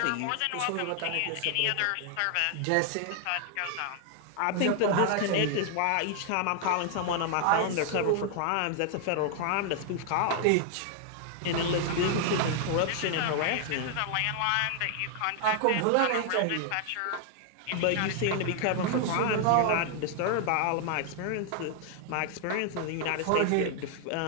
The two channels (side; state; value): both; different; correlation 0.00